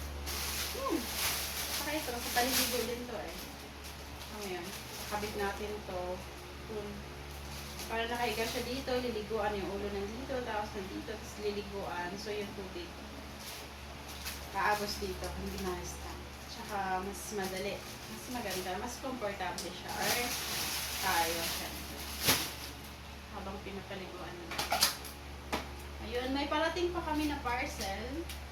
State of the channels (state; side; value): identical; both; correlation 1.00